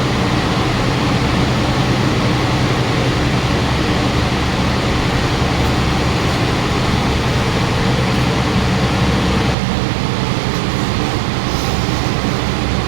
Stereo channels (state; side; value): drops out; left; at 9.6 s